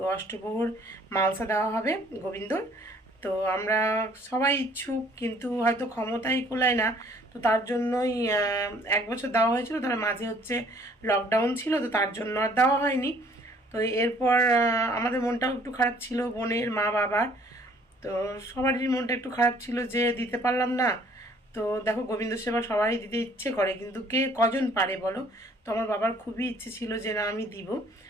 অষ্টপ্রহর মালসা দেওয়া হবে গোবিন্দর। তো আমরা সবাই ইচ্ছুক, কিন্তু হয়তো ক্ষমতাই কুলায় না, তো তার জন্যই 1 বছর দেওয়া হয়েছিল, তার মাঝে হচ্ছে লকডাউন ছিল, তো তার জন্য আর দেওয়া হয়নি। তো এরপর আমাদের মনটাও একটু খারাপ ছিল, বোনের মা বাবার, তো সবারই মনটা একটু খারাপ ছিল যে দিতে পারলাম না। তো দেখো গোবিন্দ সেবা সবাই দিতে ইচ্ছে করে, কিন্তু কে কজন পারে বলো। তো আমার বাবার খুবই ইচ্ছে ছিল যে না আমি দিব।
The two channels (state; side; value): normal; both; correlation 0.58